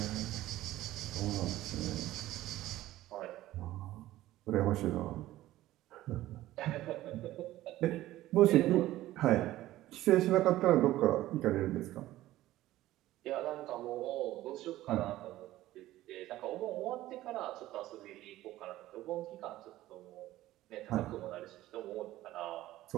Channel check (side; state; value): left; quieter; 15.5 dB